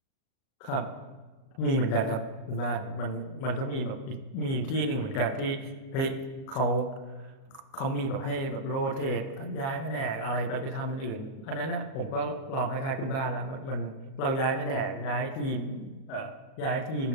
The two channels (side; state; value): right; late; 38 ms